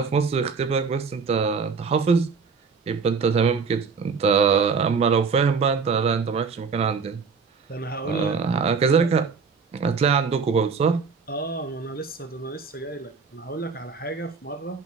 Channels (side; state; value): left; quieter; 5.3 dB